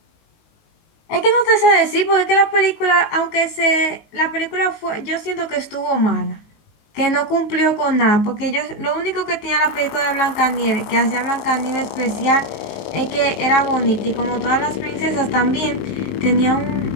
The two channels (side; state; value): right; late; 19 ms